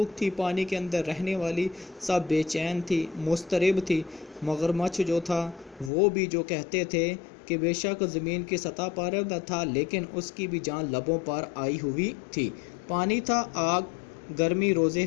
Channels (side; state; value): right; drops out; at 5.9 s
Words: تھی پانی کے اندر رہنے والی سب بے چین تھی، مضطرب تھی۔ مگرمچھ جو تھا وہ بھی جو کہتے تھے کہ بے شک زمین کی سطح پر تھا لیکن اس کی بھی جان لبوں پر آئی ہوئی تھی۔ پانی تھا آگ، گرمی روزے